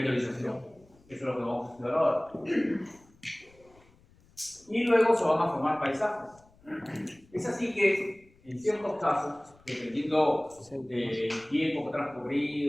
Eso es lo que vamos a estudiar ahora. Y luego se van a formar paisajes. Es así que, en ciertos casos, dependiendo del tiempo que ha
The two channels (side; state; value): left; noise; rumble, 29 dB below the sound